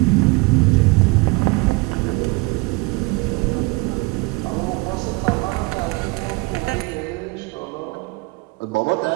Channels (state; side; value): quieter; left; 25.0 dB